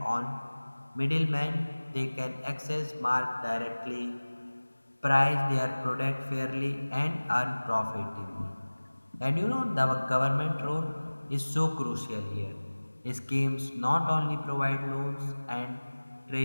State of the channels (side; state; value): both; inverted; correlation -1.00